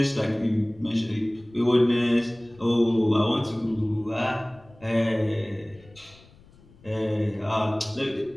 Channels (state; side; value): noise; left; rumble, 26 dB below the sound